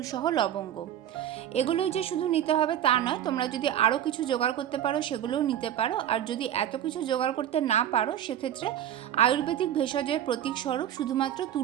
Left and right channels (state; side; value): quieter; left; 10.9 dB